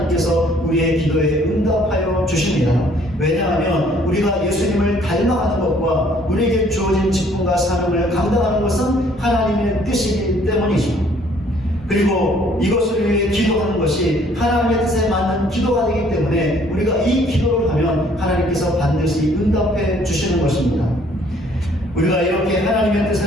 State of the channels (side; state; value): both; normal; correlation 0.60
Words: 우리의 기도에 응답하여 주십니다. 왜냐하면 우리가 예수님을 닮아가는 것과 우리에게 주어진 직분과 사명을 감당하는 것은 하나님의 뜻이기 때문이죠. 그리고 이것을 위해 기도하는 것이 하나님의 뜻에 맞는 기도가 되기 때문에 우리가 이 기도를 하면 하나님께서 반드시 응답해 주시는 것입니다. 우리가 이렇게 하나님의